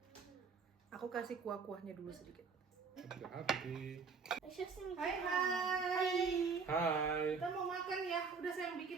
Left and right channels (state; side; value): quieter; left; 5.2 dB